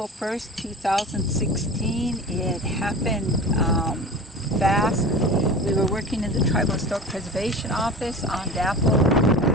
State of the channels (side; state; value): both; normal; correlation 0.35